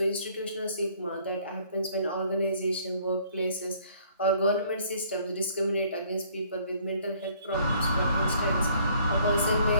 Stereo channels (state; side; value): inverted; both; correlation -0.60